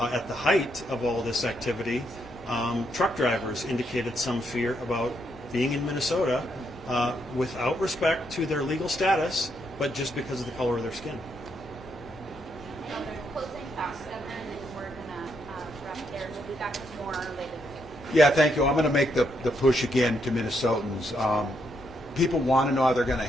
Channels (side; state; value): both; normal; correlation 0.77